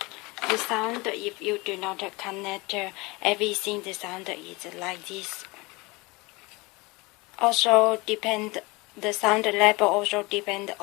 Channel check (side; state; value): right; quieter; 24.7 dB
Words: The sound, if you do not connect everything, the sound is like this. Also the sound level also depend